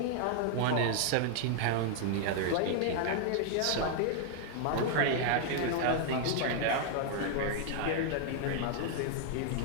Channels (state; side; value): different; both; correlation 0.00